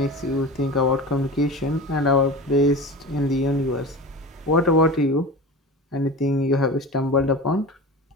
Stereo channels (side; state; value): both; normal; correlation 0.31